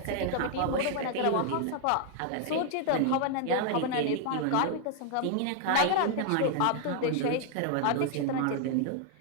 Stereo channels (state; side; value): different; both; correlation 0.00